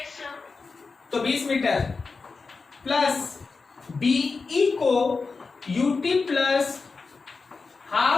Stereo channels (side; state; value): right; quieter; 4.4 dB